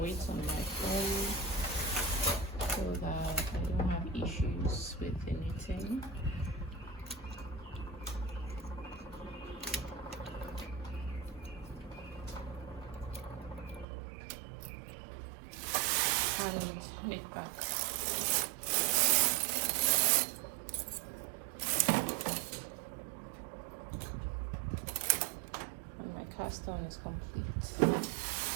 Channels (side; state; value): left; drops out; at 13.9 s